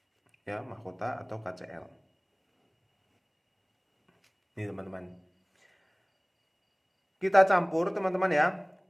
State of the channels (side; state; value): both; identical; correlation 1.00